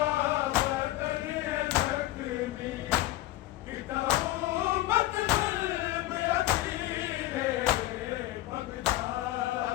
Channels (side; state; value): right; quieter; 15.8 dB